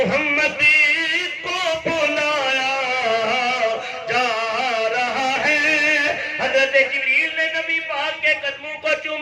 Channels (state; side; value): identical; both; correlation 1.00